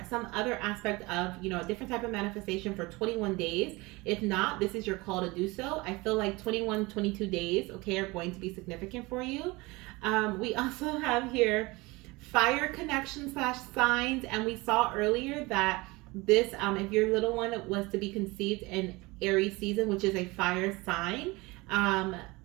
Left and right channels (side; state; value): left; quieter; 23.3 dB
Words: some other aspect of, a different type of manifestation for 21 days. If not, this is your call to do so. I feel like 21, 22 days, okay, are going to be significant for you. We also have here fire connection slash signs, and we saw earlier that this, if your little one was to be conceived in Aries season, which is a fire sign,